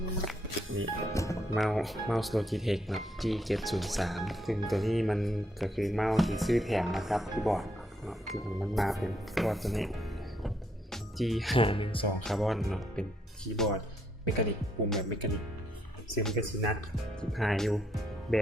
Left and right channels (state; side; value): normal; both; correlation 0.74